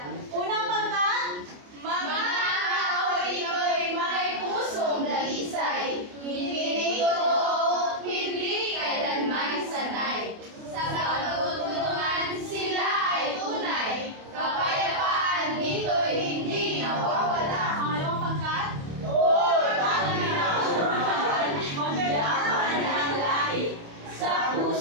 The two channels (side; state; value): left; late; 28 ms